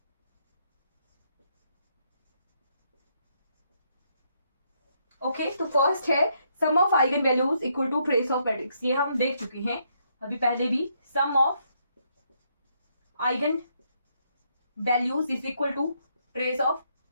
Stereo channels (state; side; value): inverted; both; correlation -0.74